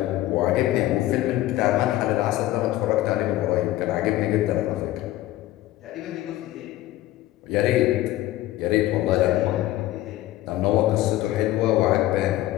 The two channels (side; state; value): right; quieter; 15.5 dB